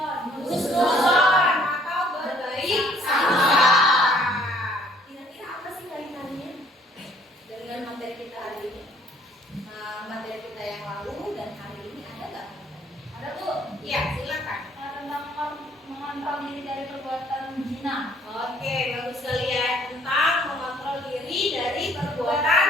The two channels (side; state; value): both; normal; correlation 0.60